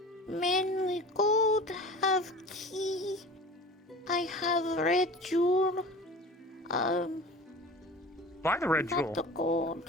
Mainly gold, have key. I have red jewel. Buy the red Not jewel. the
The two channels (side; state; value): both; normal; correlation 0.38